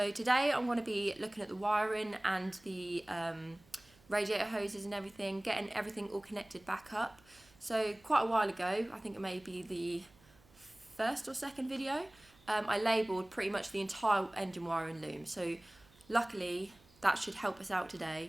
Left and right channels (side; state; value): right; noise; hum, 28 dB below the sound